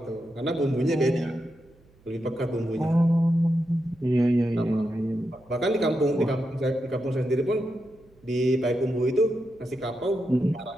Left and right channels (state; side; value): noise; right; hum, 30 dB below the sound